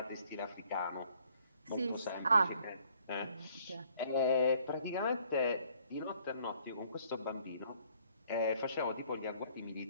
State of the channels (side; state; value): both; inverted; correlation -0.62